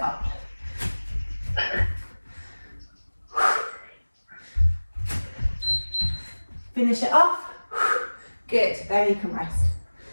up. Finish it off. Good, then you can rest.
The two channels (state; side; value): inverted; both; correlation -1.00